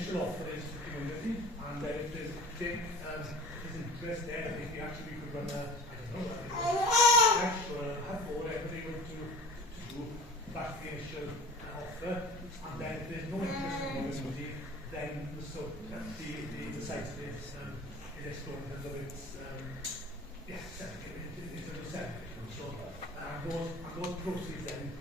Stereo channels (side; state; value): both; normal; correlation 0.41